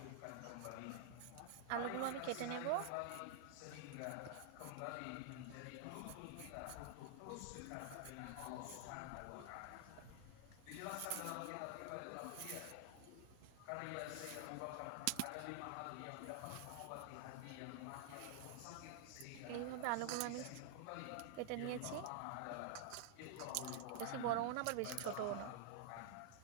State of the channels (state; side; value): different; both; correlation -0.01